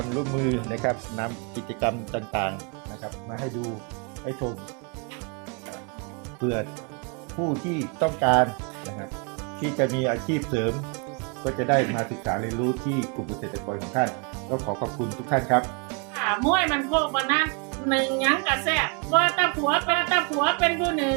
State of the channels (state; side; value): quieter; left; 35.1 dB